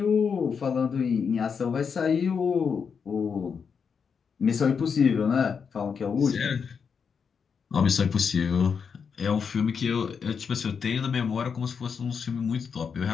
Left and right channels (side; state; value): right; quieter; 6.2 dB